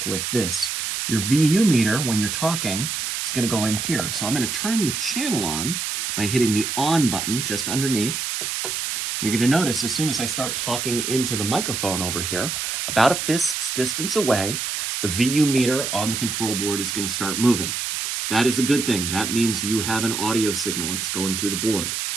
with this. Your VU meter, when you're talking, is going to go in here. So I'm going to turn the channel on by hitting the on button just underneath. You're going to notice as soon as I start talking into the microphone over here, about a fist's distance away, the VU meter on the control board is going to start moving. That is a good thing. That means you have an audio signal that's going through the board.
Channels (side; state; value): right; noise; hiss, 2 dB below the sound